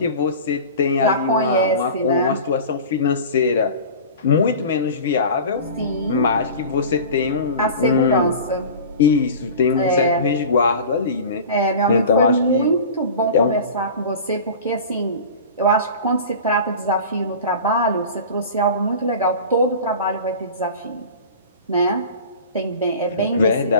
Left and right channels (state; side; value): inverted; both; correlation -0.36